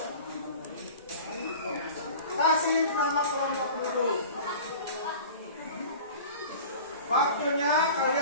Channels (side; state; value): both; inverted; correlation -0.40